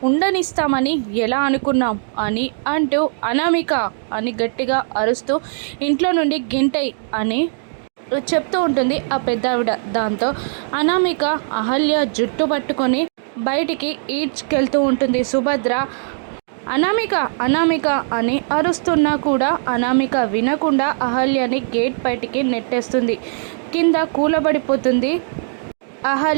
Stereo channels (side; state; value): left; silent; digital silence